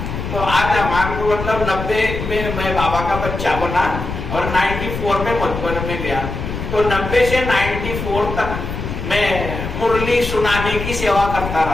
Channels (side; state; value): left; noise; rumble, 6 dB below the sound